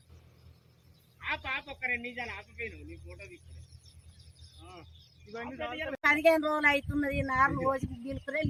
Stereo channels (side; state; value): both; identical; correlation 1.00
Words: ఒక 2 నిమిషాలు ఆపిపోయినావు నీ ఫోటో తీసుకుని 15 రోజులు అవుతున్నది. 4 రోజులు గీలుకునే